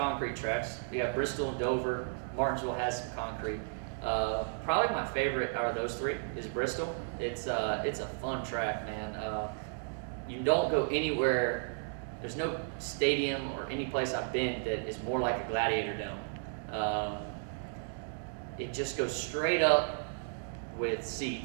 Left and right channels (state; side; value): silent; left; digital silence